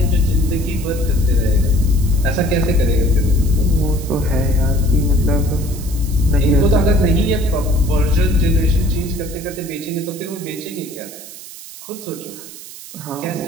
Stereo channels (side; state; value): right; noise; hiss, 15 dB below the sound